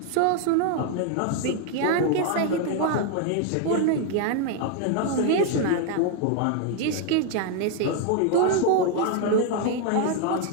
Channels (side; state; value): both; different; correlation 0.00